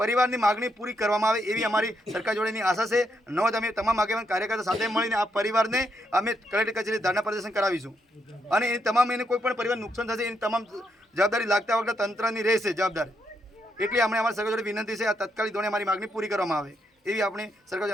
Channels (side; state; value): both; normal; correlation 0.79